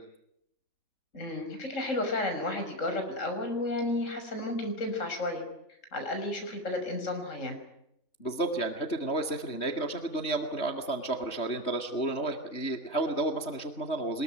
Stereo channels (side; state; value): right; late; 3.2 ms